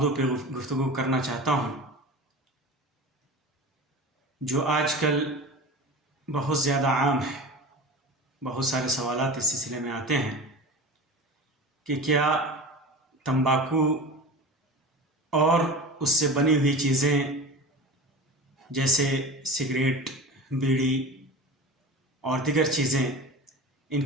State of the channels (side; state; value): both; normal; correlation 0.33